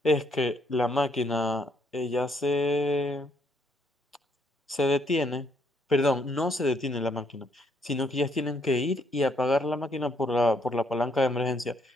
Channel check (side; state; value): both; normal; correlation 0.71